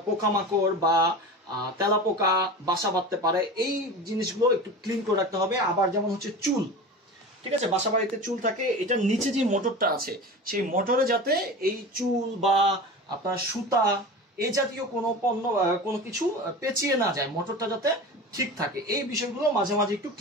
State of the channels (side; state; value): both; normal; correlation 0.32